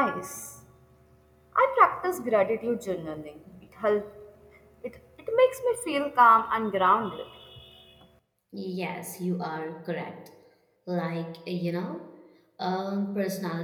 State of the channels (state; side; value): identical; both; correlation 1.00